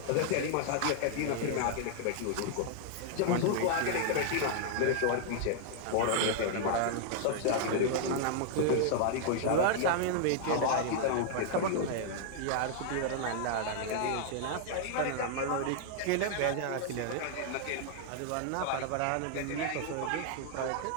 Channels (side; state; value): both; different; correlation 0.00